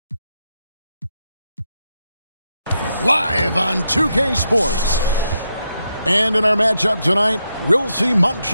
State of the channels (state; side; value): inverted; both; correlation -0.82